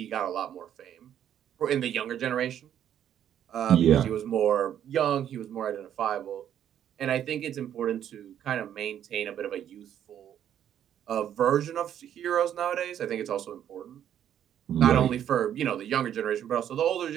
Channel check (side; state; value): left; quieter; 10.1 dB